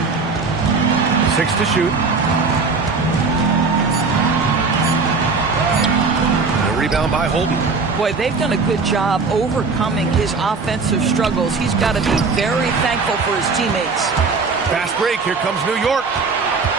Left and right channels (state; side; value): quieter; left; 4.4 dB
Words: 6 to shoot. A rebound by Holden. Boy, they've done a good job overcoming his offensive struggles. He's got to be very thankful for his teammates. Fast break. Here comes New York.